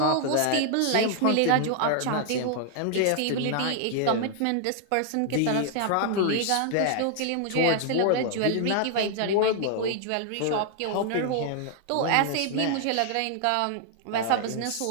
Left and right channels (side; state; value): both; different; correlation 0.00